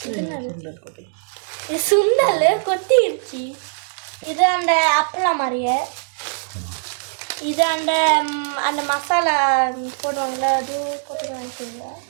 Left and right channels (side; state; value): left; silent; digital silence